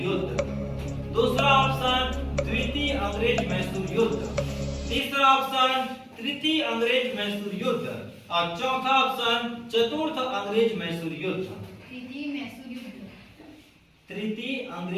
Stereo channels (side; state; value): both; identical; correlation 1.00